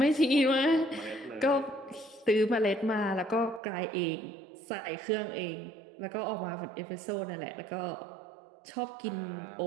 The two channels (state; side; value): drops out; left; at 3.6 s